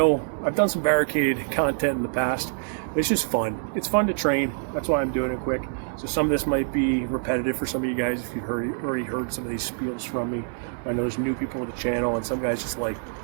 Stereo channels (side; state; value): left; silent; digital silence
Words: I've done some Barricade content in the past, but it's just fun. It's fun to train. That's why I'm doing it quick. So some of this might be repetitive for some of you guys if you've already heard some of these spiels from me. I know there's new people to the channel, and some guys just like